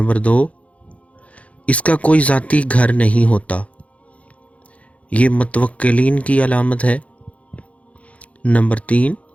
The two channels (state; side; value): late; right; 0.065 ms